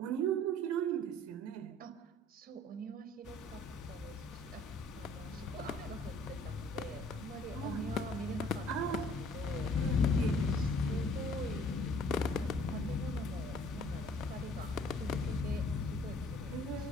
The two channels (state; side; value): normal; both; correlation 0.56